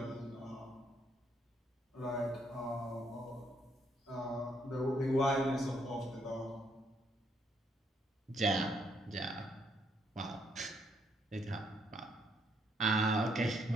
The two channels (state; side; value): normal; both; correlation 0.72